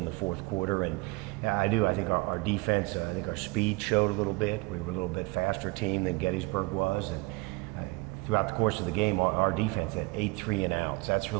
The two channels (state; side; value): quieter; left; 25.1 dB